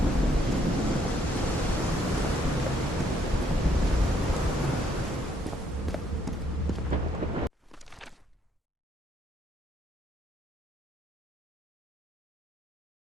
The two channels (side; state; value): both; normal; correlation 0.69